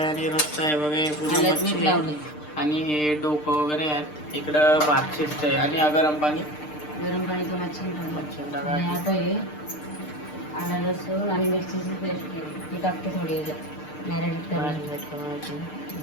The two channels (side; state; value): right; late; 6.6 ms